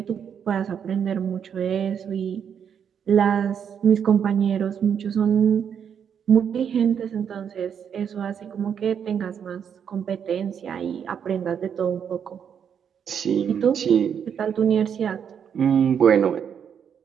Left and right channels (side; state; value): left; quieter; 7.9 dB